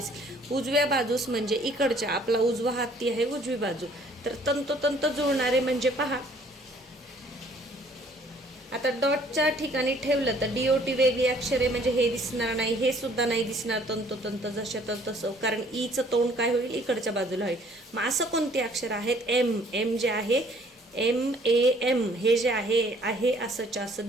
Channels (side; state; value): both; normal; correlation 0.59